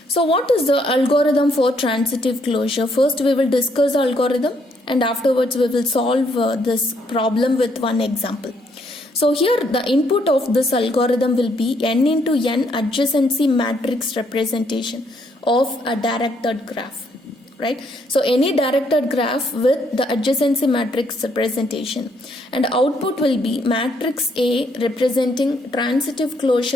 So what is the algorithm for transitive closure? First we will discuss the algorithm, and afterwards we will solve this problem with one example. So here the input of this algorithm will be n into n adjacency matrix representation of a directed graph. Right? So any directed graph with the adjacency matrix representation, and output will be matrix A representing transitive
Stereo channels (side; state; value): both; normal; correlation 0.71